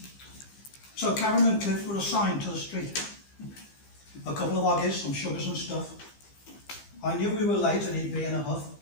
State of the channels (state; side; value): late; right; 15 ms